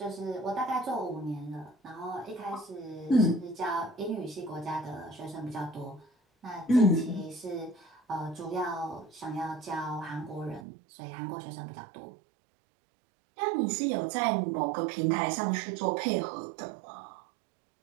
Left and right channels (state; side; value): drops out; left; at 10.7 s